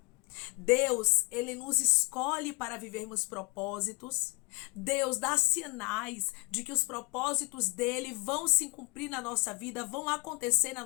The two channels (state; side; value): quieter; right; 30.4 dB